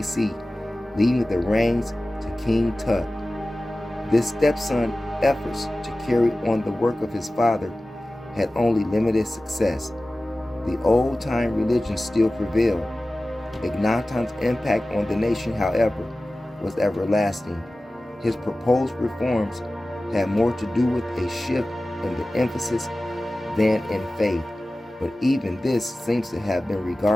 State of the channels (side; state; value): both; normal; correlation 0.96